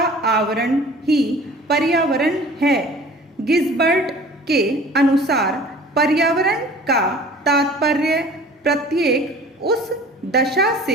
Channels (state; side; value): normal; both; correlation 0.46